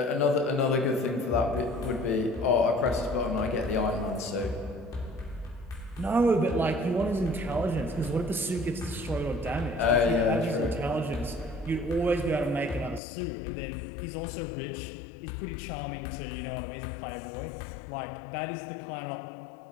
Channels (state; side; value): drops out; right; at 13.0 s